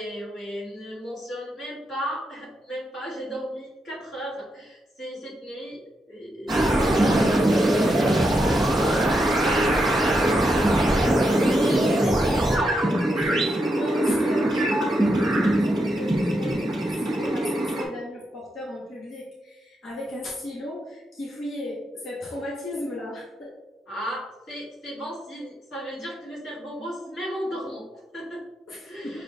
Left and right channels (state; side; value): normal; both; correlation 0.83